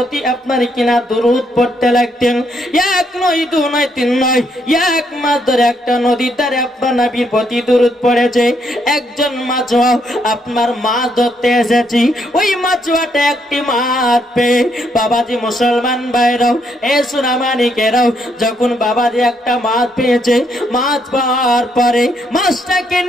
আপনার কিনা দুরূদ পড়তে লাগতেন। এক নয়, দু নয়, তিন নয়, এক মাস ধরে একটা নদীর ধারে আপনার নবীর প্রতি দুরূদ পড়েছে। একজন মাছুয়া আপনার মাছ ধরতে এসেছি, ওই মাছুয়াটা একটি মাছ পেয়ে বাবাজি মুসলমান ভাইরাও এ সোনামানিকেরাও যখন বাবাজি একটা মাছ পেয়েছে, মাছ পাওয়ার পরে মাছটাকে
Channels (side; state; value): both; normal; correlation 0.74